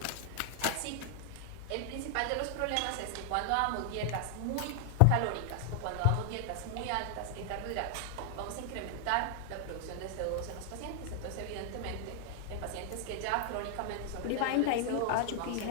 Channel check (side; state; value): both; different; correlation 0.00